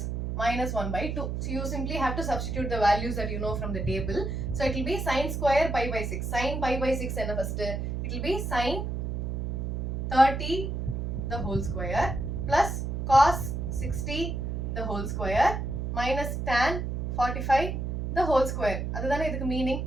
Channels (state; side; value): noise; right; hum, 2 dB below the sound